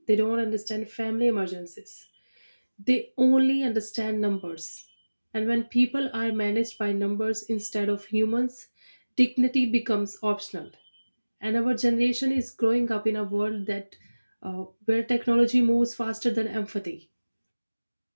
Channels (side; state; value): both; inverted; correlation -1.00